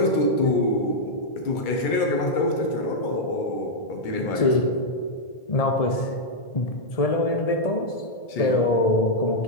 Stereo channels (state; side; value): late; right; 1.7 ms